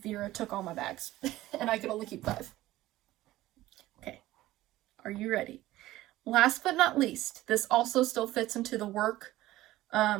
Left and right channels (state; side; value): quieter; left; 16.1 dB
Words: Vera took all my bags. And I could only keep 5. Okay. Are you ready? Last but not least, this also still fits into the work,